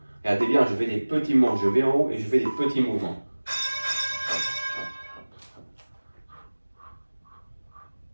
Regardez bien, je fais des petits mouvements. Je vais en haut et je fais des petits mouvements.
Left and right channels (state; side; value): inverted; both; correlation -1.00